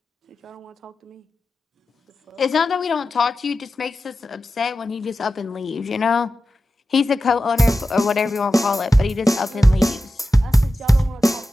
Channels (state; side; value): normal; both; correlation 0.93